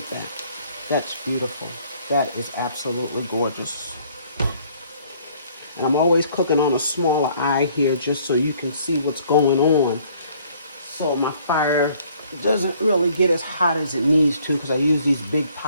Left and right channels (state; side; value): inverted; both; correlation -0.60